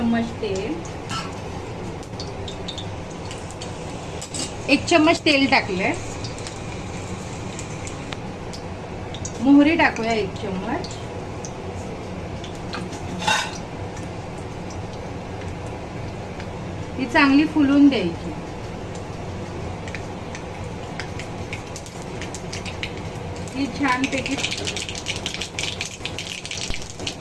तेल, 1 चम्मच तेल टाकले। मोहरी टाकूया 1 चम्मच, ती चांगली फुलून द्यायची। ती छान पैकी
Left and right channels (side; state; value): both; identical; correlation 1.00